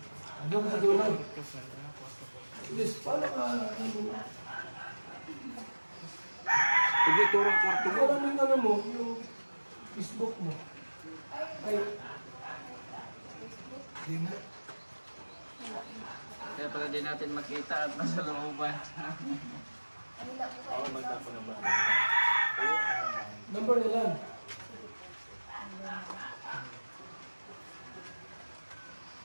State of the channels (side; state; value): both; inverted; correlation -1.00